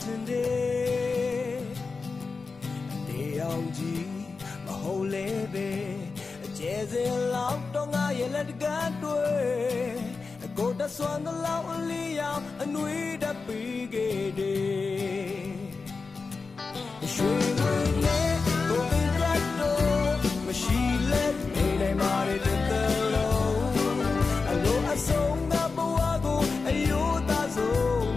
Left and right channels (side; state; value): right; quieter; 4.4 dB